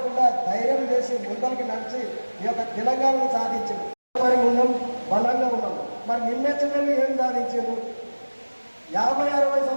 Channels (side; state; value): both; inverted; correlation -1.00